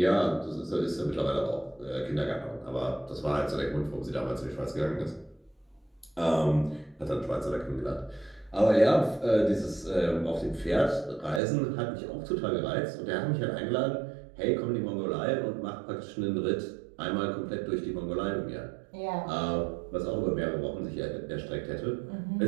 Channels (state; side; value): drops out; left; at 11.4 s